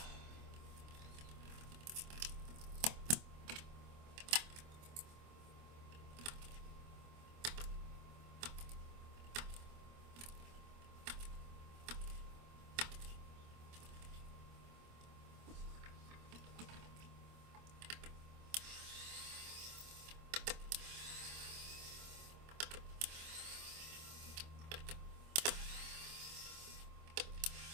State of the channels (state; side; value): late; left; 25 ms